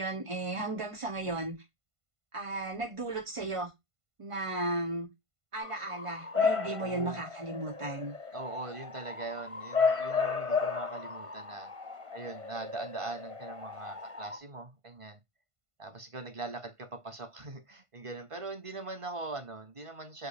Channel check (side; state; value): left; late; 1.5 ms